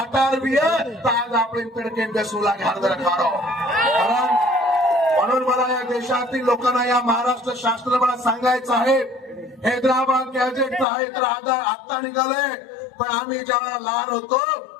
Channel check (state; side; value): drops out; right; at 10.9 s